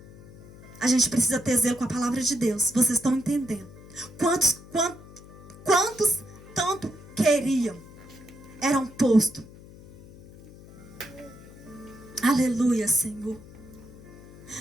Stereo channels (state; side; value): noise; left; hum, 19 dB below the sound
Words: A gente precisa ter zelo com a palavra de Deus. Vocês estão entendendo? Quantos tanto queriam, eram postos. Aleluia, Senhor.